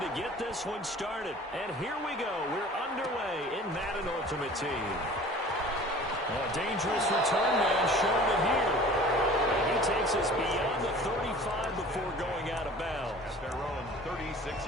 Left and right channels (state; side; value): normal; both; correlation 0.44